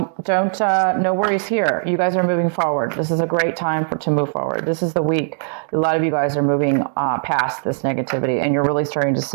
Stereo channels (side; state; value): left; silent; digital silence